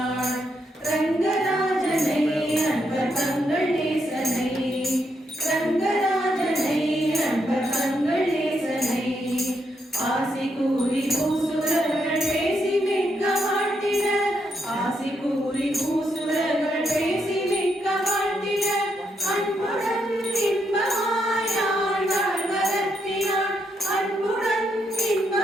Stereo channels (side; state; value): both; normal; correlation 0.79